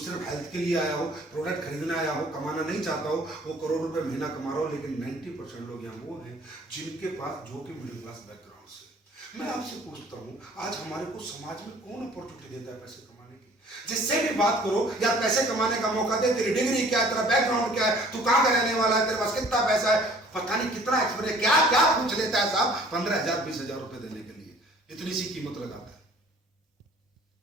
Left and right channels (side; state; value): both; normal; correlation 0.53